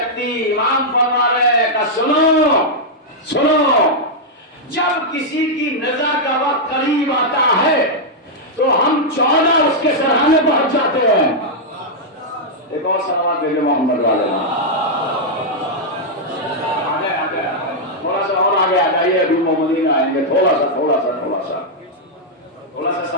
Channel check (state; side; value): normal; both; correlation -0.05